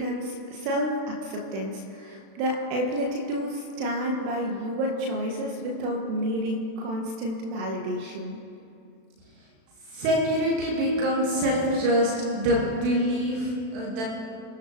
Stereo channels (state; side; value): late; left; 36 ms